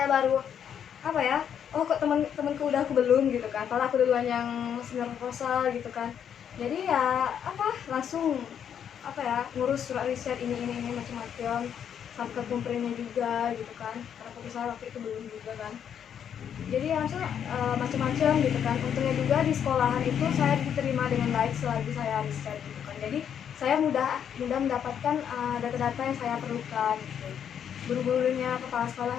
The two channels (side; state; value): right; quieter; 8.6 dB